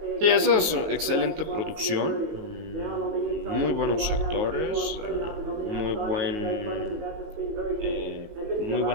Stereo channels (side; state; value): left; late; 19 ms